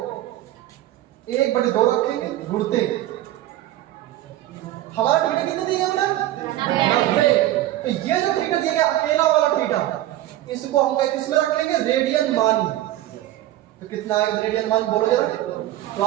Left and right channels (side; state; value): left; quieter; 14.5 dB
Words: 1/2 रखेंगे घुड़ते, हमारा थीटा कितने दिया बेटा 90। तो ये जो थीटा दिया गया अकेला वाला थीटा, इसको हम किस में रख लेंगे, रेडियन मान। तो कितना आएगा रेडियन मान बोलो जरा। तो